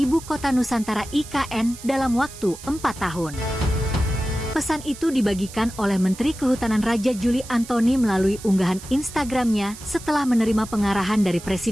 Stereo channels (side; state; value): right; noise; hiss, 16 dB below the sound